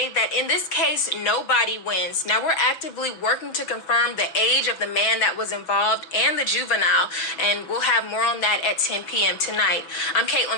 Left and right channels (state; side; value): late; right; 6.1 ms